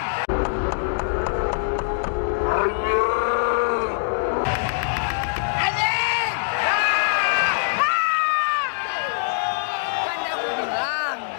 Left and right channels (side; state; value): right; silent; digital silence